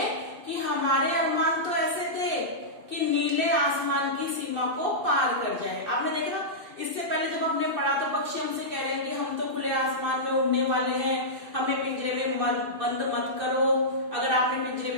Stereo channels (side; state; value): left; late; 2.6 ms